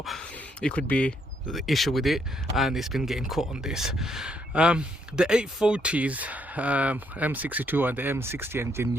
it could be the issue with it and it's been getting caught on this. The 840s, M62 and the M60 engine,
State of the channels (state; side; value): normal; both; correlation 0.73